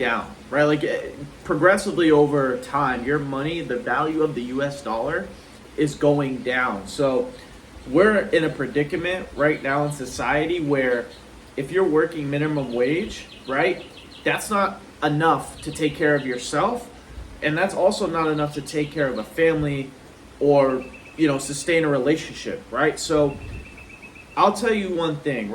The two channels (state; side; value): identical; both; correlation 1.00